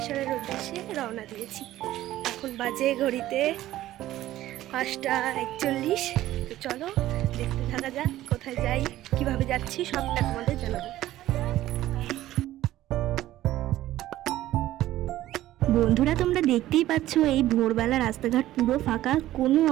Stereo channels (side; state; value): left; quieter; 14.5 dB